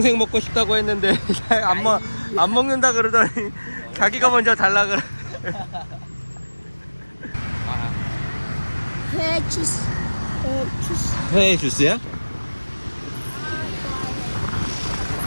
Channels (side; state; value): both; inverted; correlation -1.00